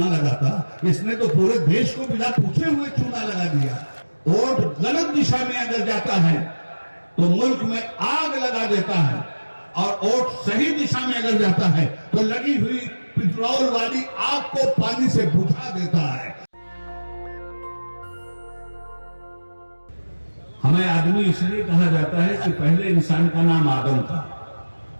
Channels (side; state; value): both; inverted; correlation -1.00